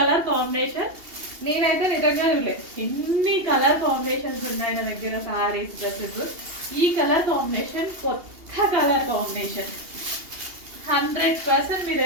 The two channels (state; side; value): late; left; 2.8 ms